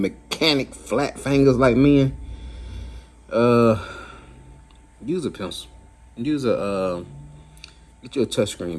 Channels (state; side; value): identical; both; correlation 1.00